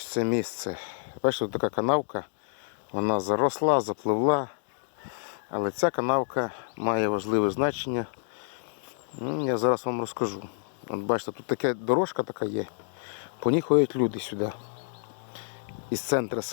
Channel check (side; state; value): right; silent; digital silence